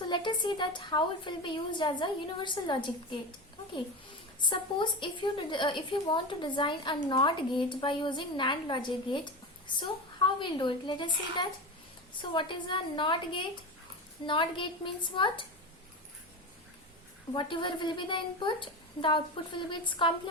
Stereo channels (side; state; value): both; normal; correlation 0.23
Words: let us see that how it will be used as a universal logic gate. Okay, suppose if you want to design a NOT gate by using NAND logic gate, so how we'll do it? Let us see that. So what is a NOT gate? NOT gate means what? Whatever will be the input, the output will be its